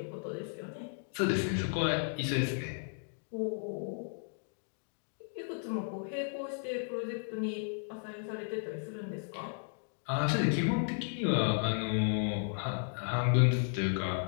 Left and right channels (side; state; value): right; silent; digital silence